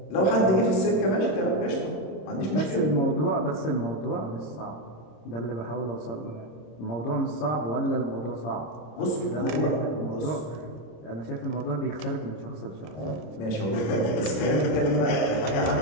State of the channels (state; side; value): late; right; 26 ms